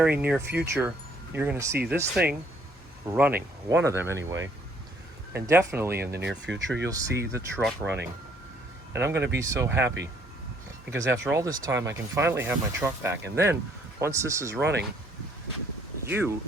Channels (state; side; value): normal; both; correlation 0.64